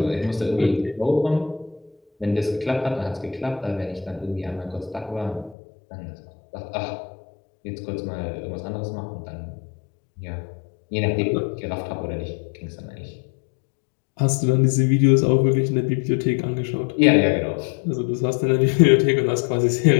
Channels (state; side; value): drops out; right; at 5.6 s